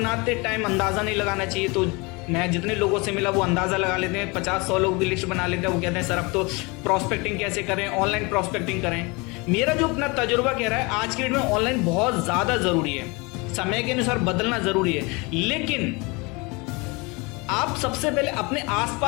टाइम अंदाज़ा नहीं लगाना चाहिए। तो मैं जितने लोगों से मिला वो अंदाज़ा लगा लेते हैं, 50-100 लोग भी लिस्ट बना लेते हैं। वो कहते हैं सर अब तो प्रॉस्पेक्टिंग कैसे करें, ऑनलाइन प्रॉस्पेक्टिंग करें। मेरा जो अपना तजुर्बा कह रहा है, आज के डेट में ऑनलाइन बहुत ज़्यादा ज़रूरी है, समय के अनुसार बदलना ज़रूरी है। लेकिन आप सबसे पहले अपने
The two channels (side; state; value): right; quieter; 27.1 dB